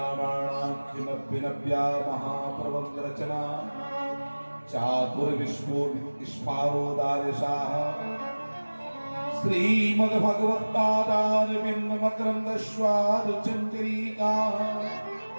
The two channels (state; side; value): inverted; both; correlation -1.00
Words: महाप्रबंध रचना चातुर्विश्वोदिष्पारोदार्यशाः श्रीमद्भगवत्पादारविन्द मकरन्द स्वादुचञ्चरीकाः